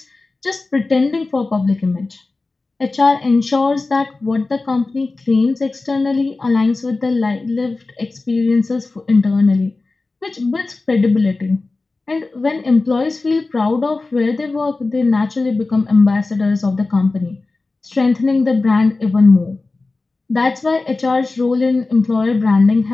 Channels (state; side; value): quieter; right; 3.5 dB